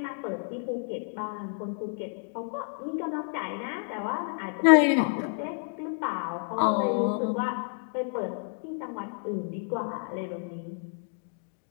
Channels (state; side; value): silent; right; 58 dB below the other